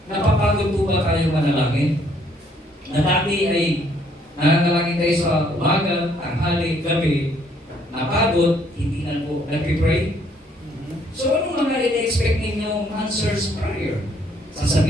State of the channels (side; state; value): both; normal; correlation 0.66